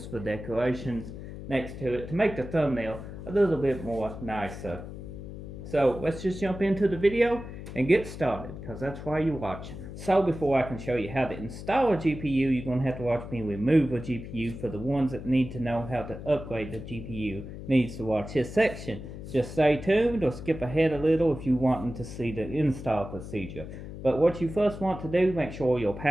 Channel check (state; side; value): noise; left; hum, 11 dB below the sound